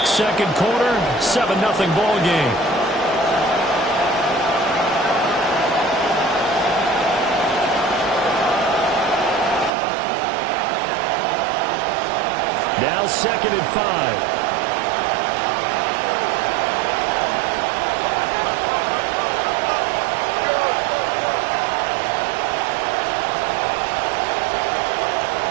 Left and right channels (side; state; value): left; drops out; at 9.7 s